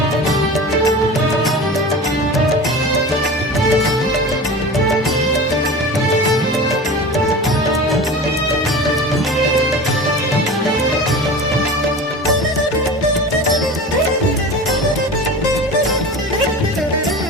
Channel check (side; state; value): both; normal; correlation 0.33